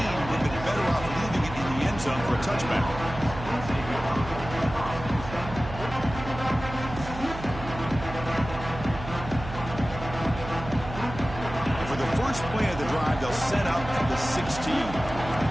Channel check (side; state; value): right; noise; hum, 10 dB below the sound